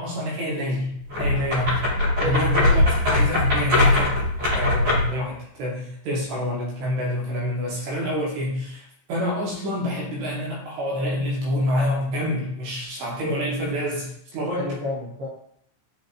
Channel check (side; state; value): left; late; 16 ms